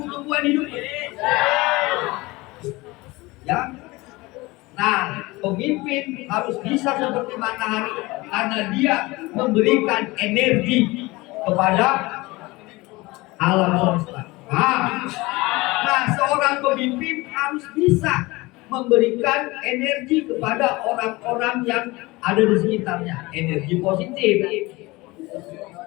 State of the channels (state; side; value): quieter; right; 22.0 dB